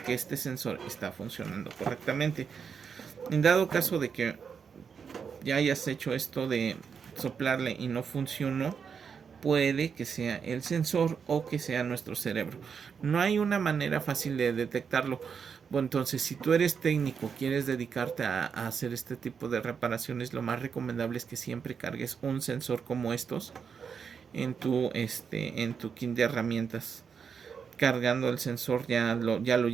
que este sensor está funcionando correctamente. En dado caso de que ya hayas hecho esto de soplarle y no funcionó, puede que sea el sensor o que sea nuestro cerebro. No hay una manera fácil de detectarlo. Bueno, entonces, si tú eres técnico, quieres dedicarte a hacer este tipo de reparaciones, lo más recomendable es que siempre cargues un sensor como estos en tu kit de herramientas. Cargando el sensor ya lo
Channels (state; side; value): quieter; left; 6.5 dB